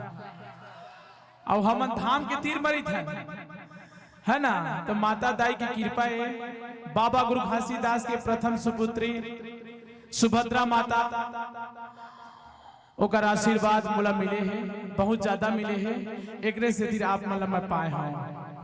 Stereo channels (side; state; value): both; identical; correlation 1.00